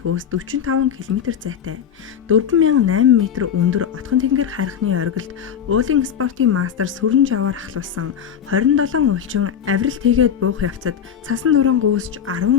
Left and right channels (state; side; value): quieter; right; 8.4 dB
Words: 45 км зайтай 4800 м өндөр Отхон тэнгэр харихны оргилд уулын спортын мастер сүрэн жаваар ахлуулсан 27 уулчин авиралт хийгээд буух явцад цасан нуран гүйсэж 10